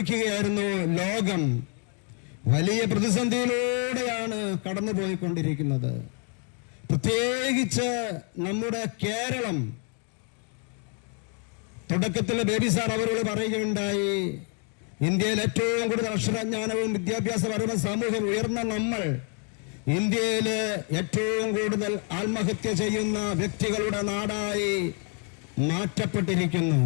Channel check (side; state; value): right; quieter; 39.7 dB